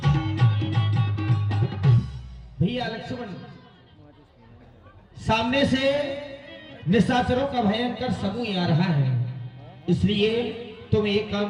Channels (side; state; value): both; identical; correlation 1.00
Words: भैया लक्ष्मण सामने से निशाचरों का भयंकर समूह आ रहा है, इसलिए तुम एक काम